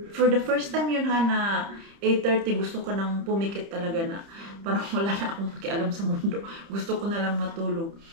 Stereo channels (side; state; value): left; late; 30 ms